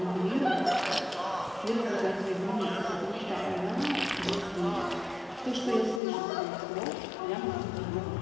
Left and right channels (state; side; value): drops out; right; at 6.0 s